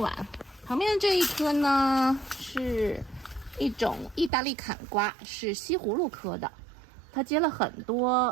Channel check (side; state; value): left; drops out; at 4.3 s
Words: 旁边的这一棵呢，是一种意大利坎瓜，是西葫芦科的，它结了很